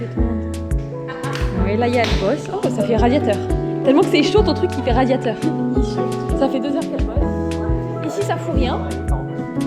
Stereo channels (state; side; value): identical; both; correlation 1.00